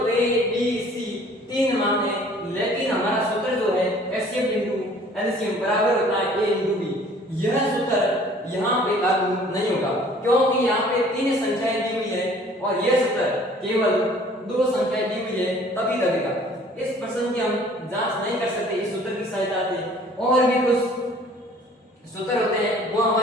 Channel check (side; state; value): both; normal; correlation 0.53